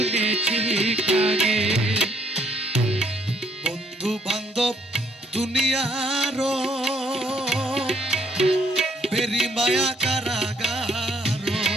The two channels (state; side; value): normal; both; correlation 0.67